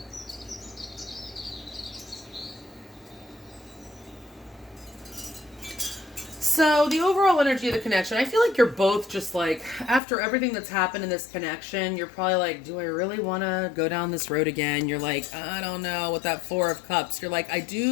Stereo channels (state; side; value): drops out; right; at 10.0 s